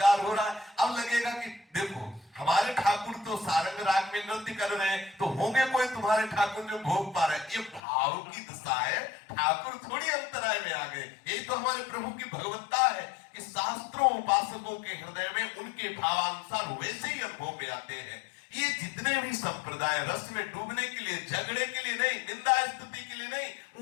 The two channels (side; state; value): right; drops out; at 7.8 s